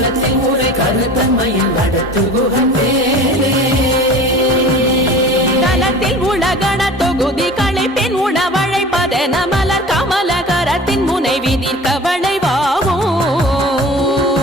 ஊரை கருத்தன்மையில் நடத்து குகன் வேலே தலத்தில் உலகண தொகுதி களைப்பின் உணவழைப்பதென மலர் கமலகரத்தின் முனை விதிர்க்க வளைவாகும்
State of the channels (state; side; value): normal; both; correlation 0.40